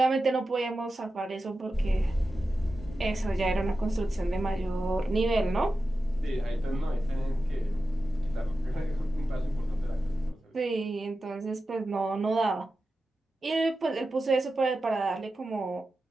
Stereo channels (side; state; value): both; normal; correlation 0.92